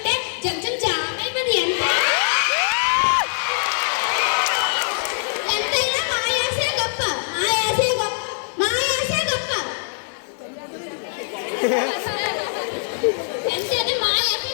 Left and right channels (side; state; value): right; silent; digital silence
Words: జంజం జామైపోయింది. ఎంతైనా మా యాసే గొప్ప, మా యాసే గొప్ప, మా యాసే గొప్ప. ఎంతైనా మా యాసే